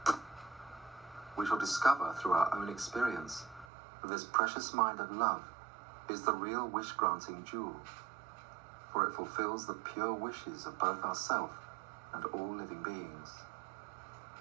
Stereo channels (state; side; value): drops out; left; at 3.7 s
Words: We shall discover through our own experience that this precious mind of love is the real wish-granting jewel, for it fulfills the pure wishes of both ourselves and all living beings.